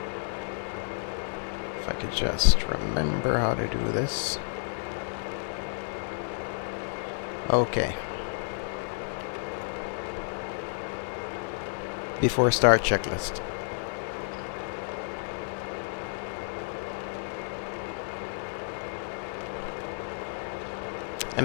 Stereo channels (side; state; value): right; silent; digital silence